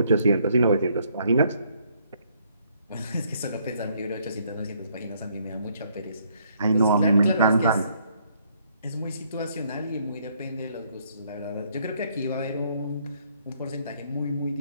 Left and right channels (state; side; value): inverted; both; correlation -0.68